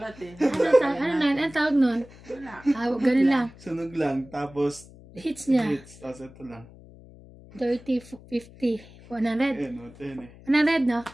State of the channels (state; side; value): noise; left; hum, 21 dB below the sound